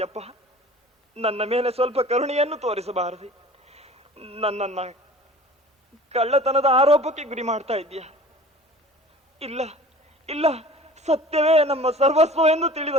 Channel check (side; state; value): both; normal; correlation 0.43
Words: ನನ್ನ ಮೇಲೆ ಸ್ವಲ್ಪ ಕರುಣೆಯನ್ನು ತೋರಿಸಬಾರದು. ನನ್ನನ್ನ ಕಳ್ಳತನದ ಆರೋಪಕ್ಕೆ ಗುರಿ ಮಾಡ್ತಾ ಇದ್ದೀಯ. ಇಲ್ಲ ಇಲ್ಲ, ಸತ್ಯವೇ ನಮ್ಮ ಸರ್ವಸ್ವ ಎಂದು ತಿಳಿದ